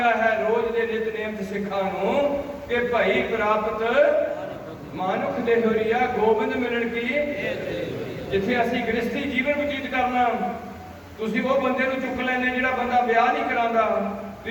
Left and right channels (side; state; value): both; identical; correlation 1.00